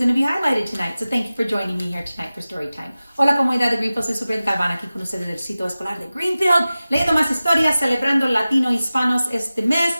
to be highlighted tonight. So thank you for joining me here tonight for story time. Hola comunidad de Greenfield, soy Superintendent Galvan aquí con ustedes del sitio escolar de Greenfield, leyendo más historias, celebrando latino hispanos este mes.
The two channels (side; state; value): both; inverted; correlation -0.96